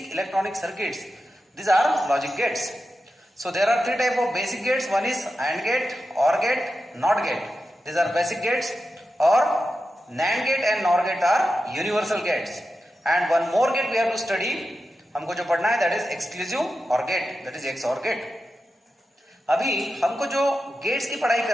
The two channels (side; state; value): both; normal; correlation 0.91